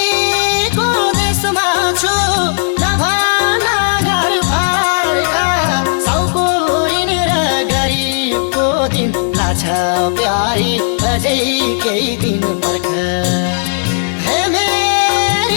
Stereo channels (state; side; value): silent; right; digital silence